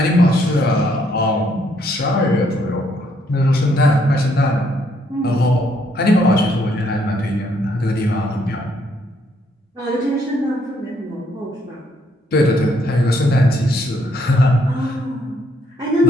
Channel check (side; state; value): both; normal; correlation 0.70